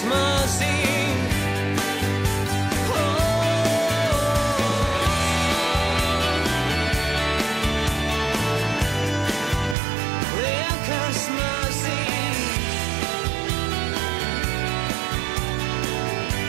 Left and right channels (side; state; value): left; drops out; at 9.8 s